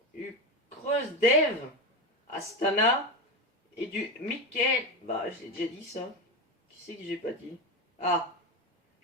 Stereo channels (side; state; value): both; normal; correlation 0.18